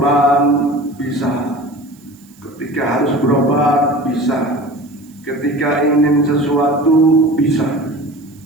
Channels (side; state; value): right; noise; hiss, 29 dB below the sound